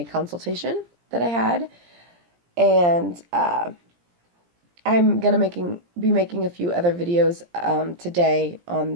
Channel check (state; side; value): late; left; 17 ms